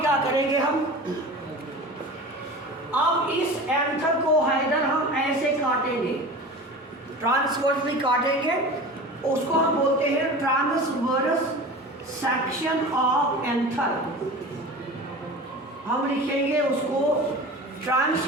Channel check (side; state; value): both; normal; correlation 0.35